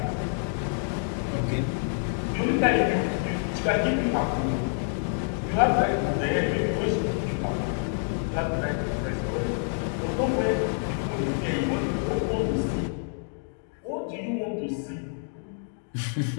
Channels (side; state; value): right; silent; 60 dB below the other